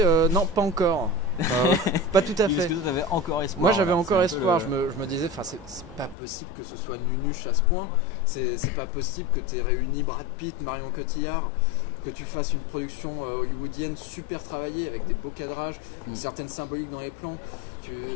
non, pas encore. Pas tout à fait. Parce que toi, t'avais encore espoir. Moi, j'avais encore espoir. Je me disais, c'est pas possible que ce soit nunuche à ce point. C'est pas possible que tu aies réuni Brad Pitt, Marion Cotillard, que tu fasses une production hollywoodienne super travaillée avec des beaux cadrages, une certaine symbolique dans les plans,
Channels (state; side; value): drops out; right; at 6.2 s